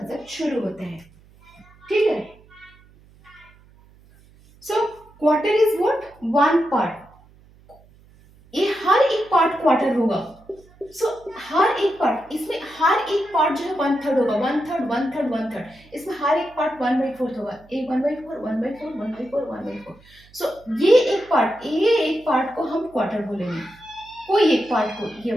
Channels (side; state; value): right; noise; hum, 27 dB below the sound